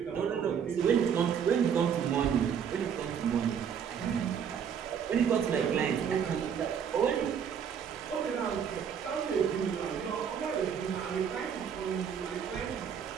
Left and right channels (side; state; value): left; quieter; 7.7 dB